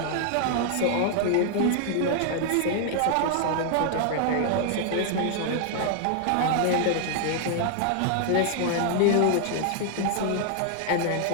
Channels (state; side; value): different; both; correlation 0.00